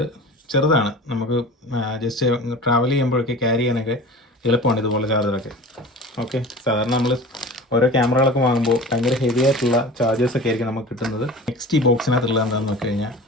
ചെറുതാണ്, നമുക്ക് ജസ്റ്റ് ട്രാവൽ ചെയ്യുമ്പോഴൊക്കെ ക്യാരി ചെയ്യാനൊക്കെ എളുപ്പമാണ് ഇതുപോലെ ചാർജറൊക്കെ. ഓക്കെ, സാധാരണ നമ്മൾ ഓരോ ക്യാമറകളൊക്കെ വാങ്ങുമ്പോൾ ഭയങ്കര ഹെവി ആയിട്ടുള്ള ചാർജേഴ്സൊക്കെ ആയിരിക്കും നമുക്ക് കിട്ടുന്നത്. നെക്സ്റ്റ് ഈ ബോക്സിനകത്തുള്ളത് എന്താണെന്ന് നോക്കി കഴിഞ്ഞാൽ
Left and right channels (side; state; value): both; normal; correlation 0.37